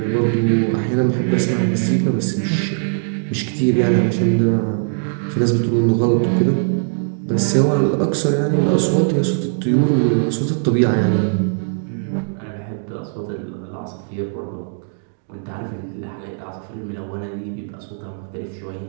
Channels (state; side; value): silent; left; digital silence